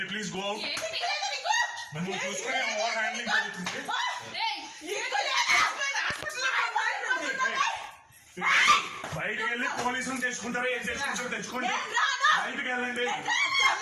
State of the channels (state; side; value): identical; both; correlation 1.00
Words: you please go out? నువ్వు చూసుకుని ఓవర్ హ్యాండ్లింగ్ జరుగుతుంది బయటకు వెళ్ళి పోలీసులు తెచ్చుకుంటారు ఏం తెచ్చుకుంటారో తెచ్చుకోండి బయటకు వెళ్ళండి